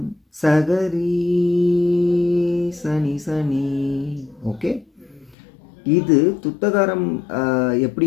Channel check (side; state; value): right; drops out; at 5.4 s